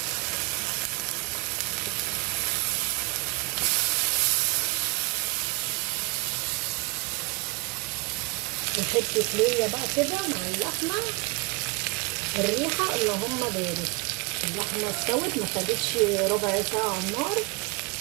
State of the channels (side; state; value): left; quieter; 27.0 dB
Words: وحته ليا بقى كده مع اللحمه الريحه اللهم بارك. اللحمه استوت ما خدتش ربع ساعه على النار،